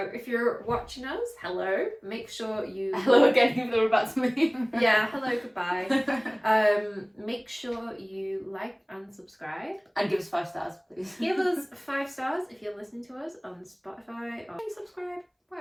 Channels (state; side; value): identical; both; correlation 1.00